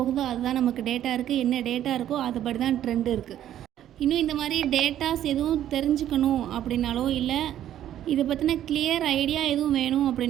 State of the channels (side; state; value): left; quieter; 11.5 dB